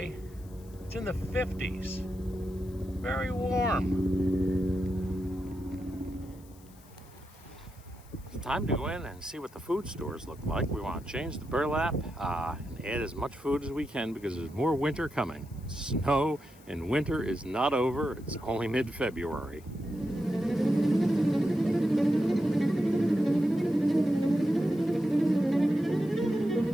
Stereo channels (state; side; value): noise; left; hiss, 26 dB below the sound